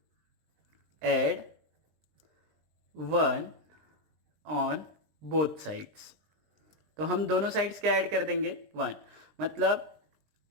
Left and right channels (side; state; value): left; late; 20 ms